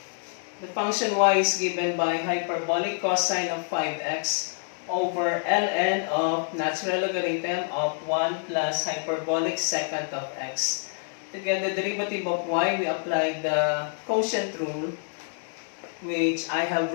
The function y is given by hyperbolic cosine of 5x over ln of natural logarithm of 1 plus hyperbolic secant of x. To get the derivative of y, we apply the quotient rule, which I have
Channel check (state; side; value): silent; right; 60 dB below the other